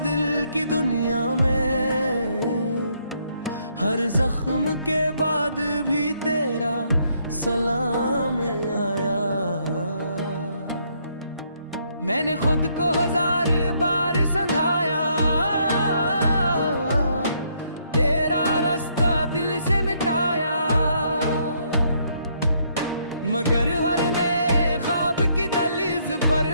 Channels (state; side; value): inverted; both; correlation -0.71